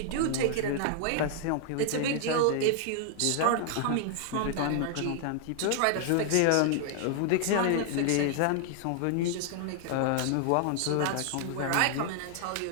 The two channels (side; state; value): both; different; correlation 0.00